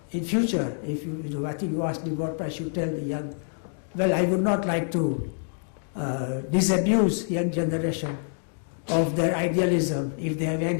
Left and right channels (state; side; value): silent; right; digital silence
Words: in future, if I think you asked me what I should tell the young, well, I would not like to disabuse young generation of their idealism, if they have